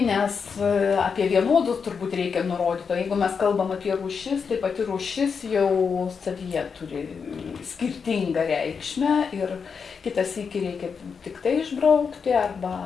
nes apie vienodus turbūt reikia nurodyti. O jeigu mes kalbam apie rūšis, tai pati rūšis jau savyje turi skirtingą reikšmę ir kitas sykį reikia tik tai išbraukti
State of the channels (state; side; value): quieter; right; 5.9 dB